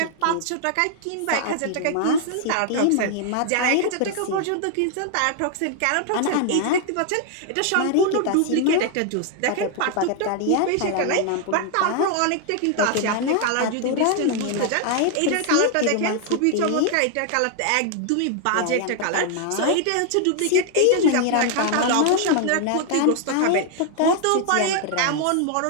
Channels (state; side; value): different; both; correlation 0.00